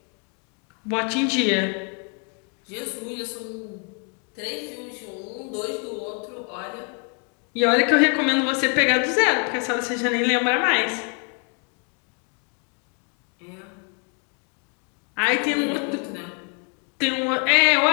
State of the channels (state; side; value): quieter; right; 39.0 dB